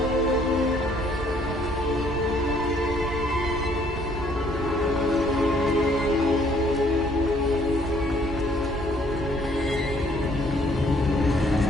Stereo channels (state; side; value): normal; both; correlation 0.63